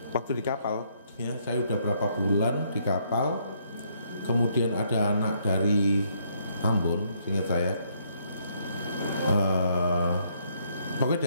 waktu di kapal ya, saya udah berapa bulan di kapal, kemudian ada anak dari Ambon, seingat saya pokoknya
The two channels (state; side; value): inverted; both; correlation -0.70